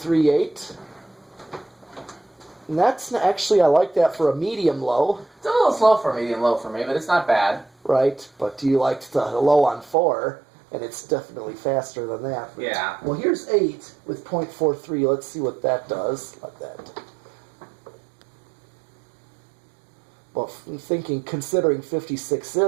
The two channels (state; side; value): drops out; left; at 10.0 s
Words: And that's actually, I like that for a medium low. It's a little slow for a medium low for me, but it's not bad. Right, but you liked the low on 4, and it's definitely faster than that. Yeah. Well, here's 8 with 0.43. Let's see what that does. Like that. Well, I'm thinking, considering